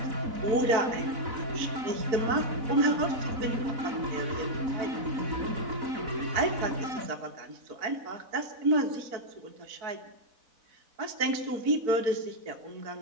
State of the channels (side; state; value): left; late; 4.0 ms